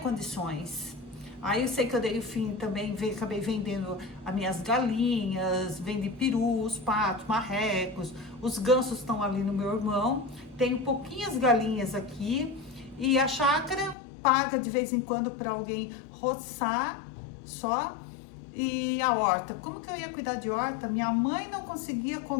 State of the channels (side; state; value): right; drops out; at 14.0 s